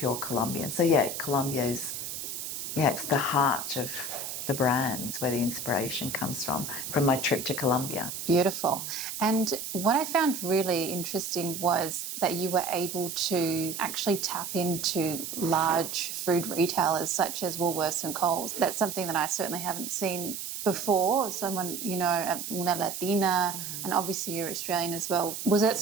Colombian. So Colombia's, it's the heart of the brands where the inspiration comes from my trip to Colombia. Beautiful. And what I found really interesting was that you were able to actually tap into large food retailers such as Woolworths and Coles. That's something that I certainly haven't seen before. Someone, una Latina, and obviously you're Australian as well. Was it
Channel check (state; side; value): noise; right; hiss, 6 dB below the sound